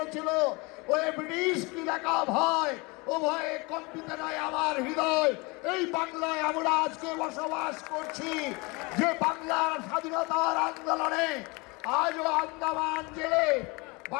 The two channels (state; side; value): quieter; right; 26.7 dB